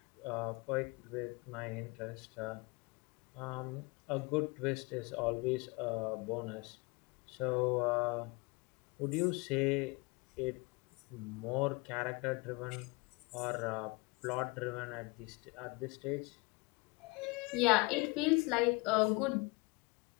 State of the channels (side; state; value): right; quieter; 27.1 dB